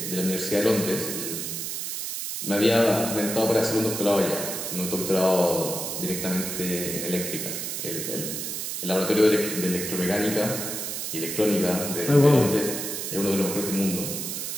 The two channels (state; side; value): noise; right; hiss, 4 dB below the sound